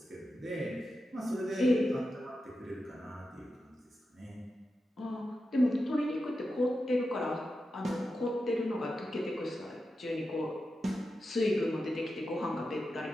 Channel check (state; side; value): normal; both; correlation 0.90